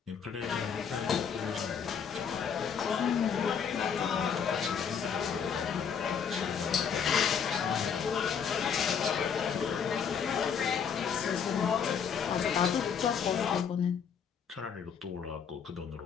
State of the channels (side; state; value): right; quieter; 7.1 dB